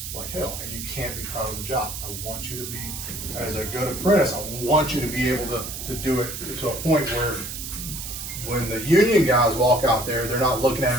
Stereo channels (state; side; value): noise; right; hiss, 7 dB below the sound